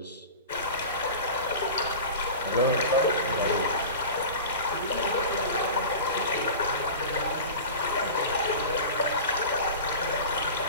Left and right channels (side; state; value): both; inverted; correlation -0.33